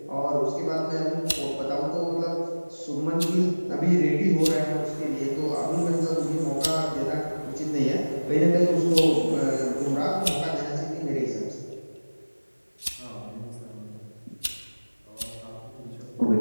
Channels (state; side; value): inverted; both; correlation -1.00